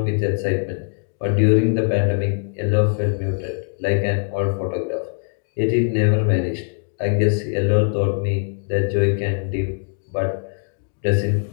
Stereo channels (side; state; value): right; silent; digital silence